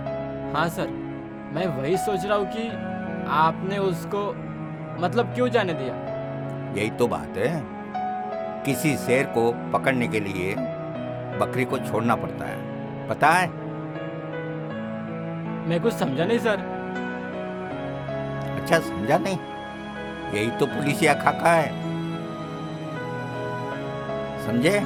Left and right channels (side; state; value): both; identical; correlation 1.00